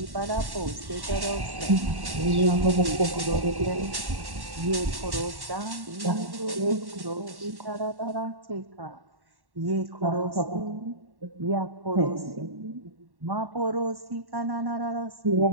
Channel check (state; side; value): late; left; 1.1 ms